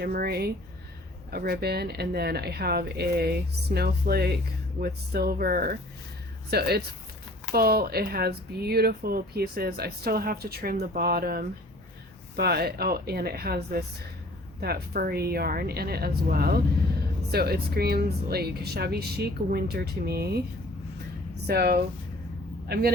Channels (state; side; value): normal; both; correlation 0.51